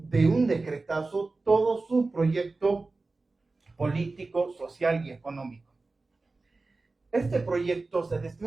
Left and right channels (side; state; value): left; quieter; 3.5 dB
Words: un decretazo todo su proyecto político, social y económico. Este proyecto, desde